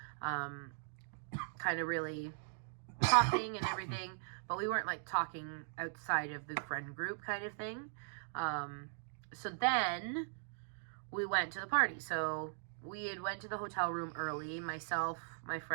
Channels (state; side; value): silent; left; digital silence